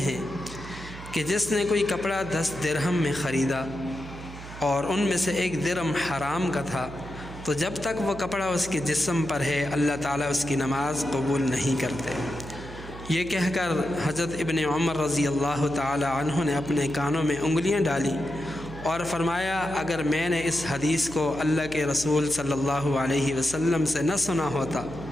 کہ جس نے کوئی کپڑا 10 درہم میں خریدا اور ان میں سے 1 درہم حرام کا تھا، تو جب تک وہ کپڑا اس کے جسم پر ہے اللہ تعالیٰ اس کی نماز قبول نہیں کرتے۔ یہ کہہ کر حضرت ابن عمر رضی اللہ تعالی عنہ نے اپنے کانوں میں انگلیاں ڈالی اور فرمایا، اگر میں نے اس حدیث کو اللہ کے رسول صلی اللہ علیہ وسلم سے نہ سنا ہوتا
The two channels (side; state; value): right; noise; hum, 13 dB below the sound